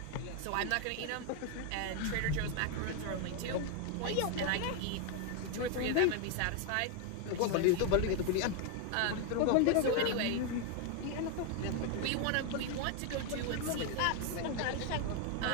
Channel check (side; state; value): both; different; correlation 0.01